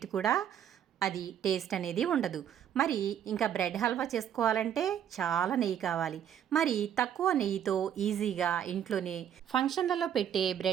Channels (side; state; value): left; quieter; 9.5 dB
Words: కూడా అది టేస్ట్ అనేది ఉండదు. మరి ఇంకా బ్రెడ్ హల్వా చేసుకోవాలంటే చాలా నెయ్యి కావాలి. మరి తక్కువ నెయ్యితో ఈజీగా ఇంట్లోనే ఫంక్షన్లలో పెట్టే